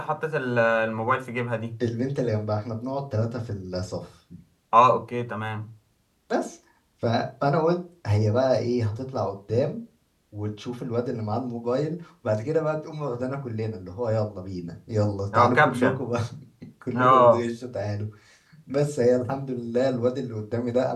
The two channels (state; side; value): identical; both; correlation 1.00